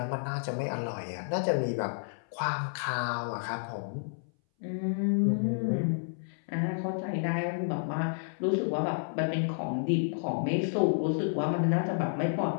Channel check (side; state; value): right; silent; 57 dB below the other